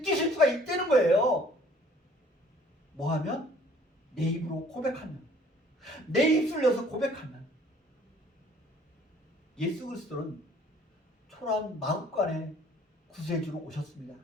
수가 있다는 거예요. 뭐 하면? 내 입으로 고백하면, 내 입술을 열어서 고백하면. 예수 그리스도는 초라한 마음간에 구세주로 오셨습니다.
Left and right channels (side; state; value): both; normal; correlation 0.55